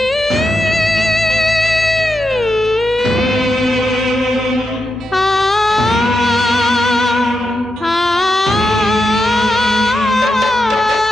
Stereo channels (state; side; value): normal; both; correlation 0.86